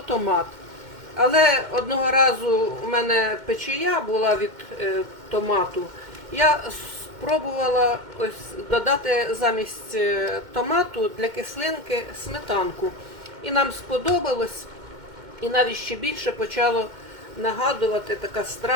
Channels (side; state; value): left; late; 2.1 ms